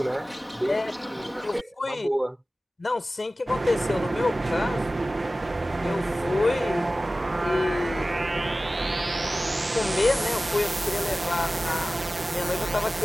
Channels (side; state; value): both; normal; correlation 0.96